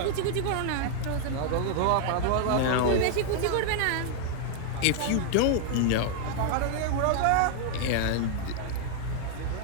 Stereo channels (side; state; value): both; different; correlation 0.00